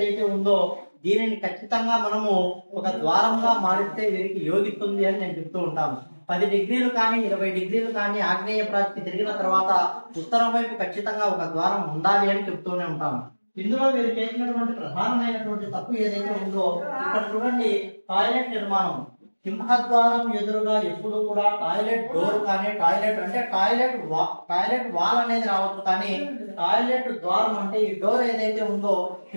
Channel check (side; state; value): both; inverted; correlation -1.00